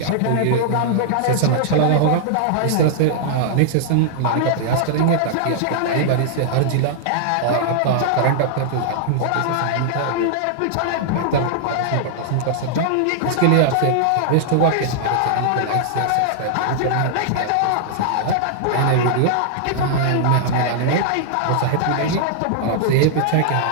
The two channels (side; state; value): both; different; correlation -0.01